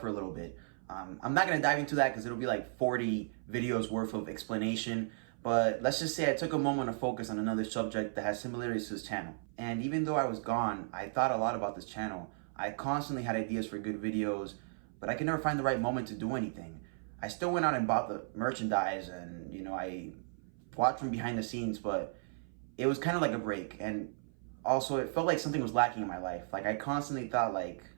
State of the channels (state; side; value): silent; left; 54 dB below the other